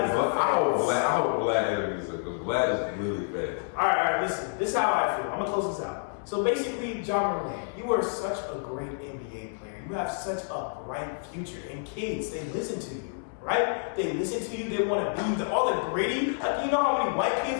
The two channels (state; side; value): silent; right; digital silence